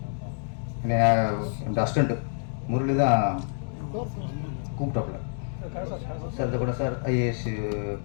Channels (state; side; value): silent; right; digital silence